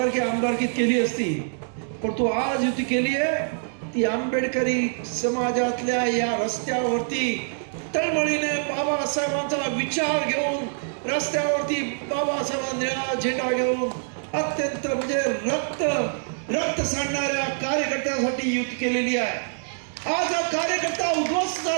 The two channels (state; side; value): silent; left; digital silence